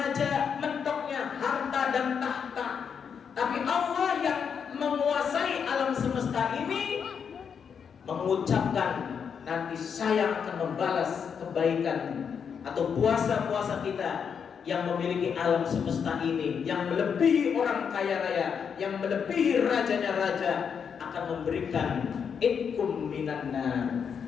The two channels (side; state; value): right; quieter; 6.9 dB